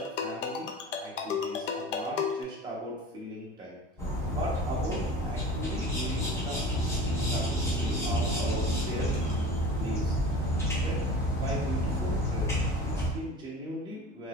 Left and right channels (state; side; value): normal; both; correlation 0.38